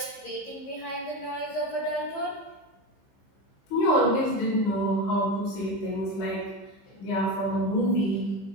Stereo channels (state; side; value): late; right; 15 ms